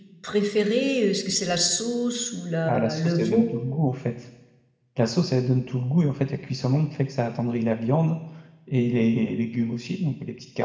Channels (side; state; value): both; identical; correlation 1.00